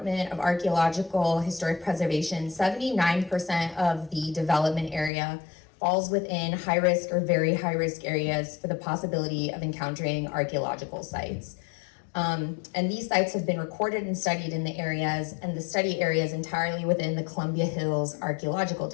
of Archaeological Historic Preservation, 79% of the development area falls within high-risk or very high-risk areas for the possibility of encountering archaeological sites. And these sites have been recorded and studied in the areas, and the study area is entirely within the Columbia Hills Archaeological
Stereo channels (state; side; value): drops out; right; at 5.1 s